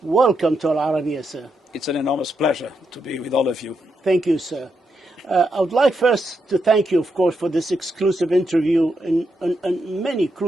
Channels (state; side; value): normal; both; correlation 0.82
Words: welcome to Al Arabiya, sir. It's an enormous pleasure to be with all of you. Thank you, sir. I would like first to thank you, of course, for this exclusive interview on many